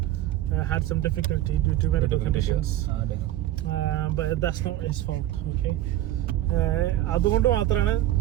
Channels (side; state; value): left; quieter; 13.8 dB